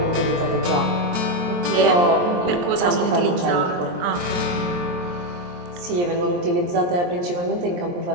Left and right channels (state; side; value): late; left; 23 ms